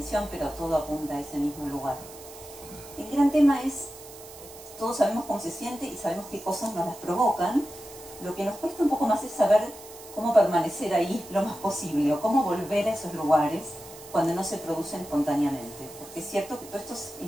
pero todo apunta a ese mismo lugar. El gran tema es, todos sabemos cómo se siente y sabemos qué cosas nos las provocan. Lo que nos cuesta un poco más es saber cómo permanecer ahí lo más posible, o cómo volver a esos lugares cuando no se producen espontáneamente. Porque es cierto que todas estas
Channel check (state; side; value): noise; right; hiss, 17 dB below the sound